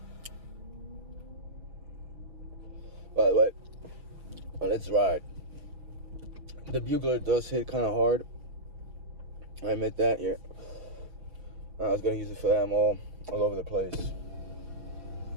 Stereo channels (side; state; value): left; late; 6.3 ms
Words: But let's ride. The bugler does hit kind of hard. I admit that. Yeah, I was gonna use it for that. I'm all over the place.